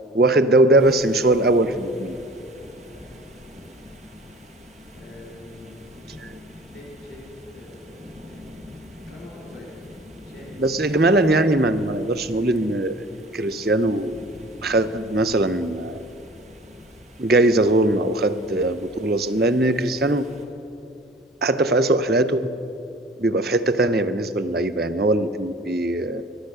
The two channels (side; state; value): both; normal; correlation 0.45